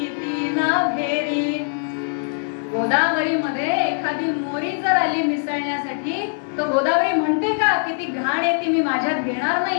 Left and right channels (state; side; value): silent; right; 63 dB below the other